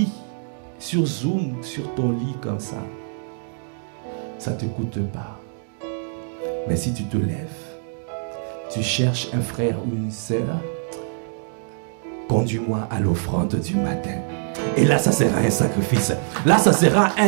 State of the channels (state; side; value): silent; left; digital silence